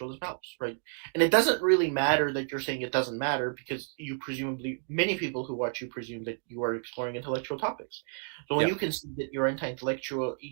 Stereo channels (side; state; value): left; silent; 57 dB below the other